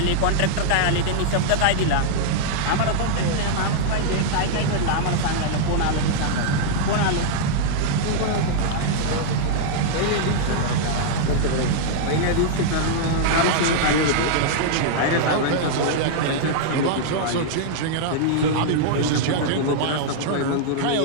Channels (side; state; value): both; different; correlation -0.01